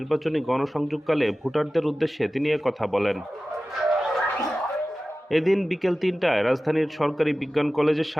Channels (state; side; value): normal; both; correlation 0.96